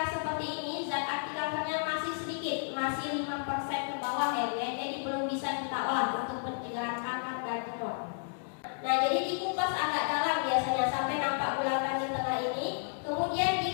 seperti ini, zat anti kankernya masih sedikit, masih 5% ke bawah ya, jadi belum bisa kita olah untuk pencegahan kanker dan tumor. Nah, jadi dikupas agak dalam biasanya sampai nampak bulatan di tengah ini, kemudian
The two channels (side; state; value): right; silent; digital silence